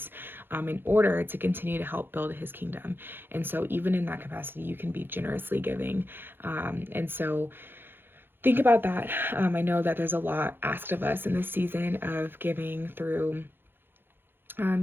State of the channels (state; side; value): late; left; 0.10 ms